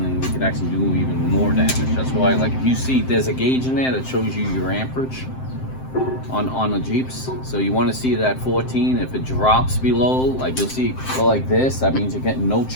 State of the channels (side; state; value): right; late; 7.7 ms